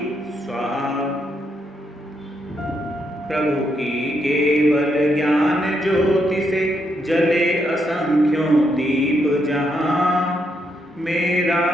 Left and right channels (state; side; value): normal; both; correlation 0.78